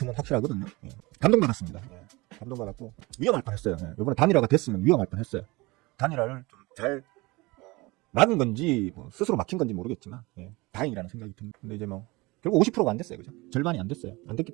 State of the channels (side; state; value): left; quieter; 23.1 dB